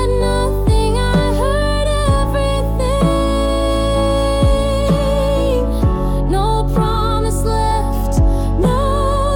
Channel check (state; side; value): identical; both; correlation 1.00